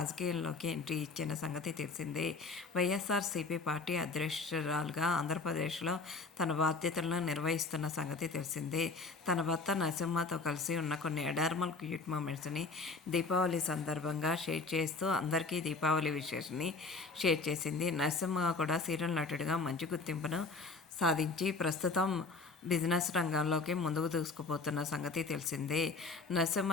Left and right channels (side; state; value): right; quieter; 4.0 dB